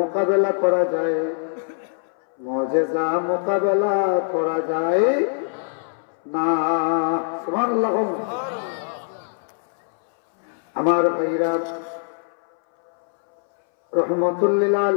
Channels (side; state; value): right; silent; 62 dB below the other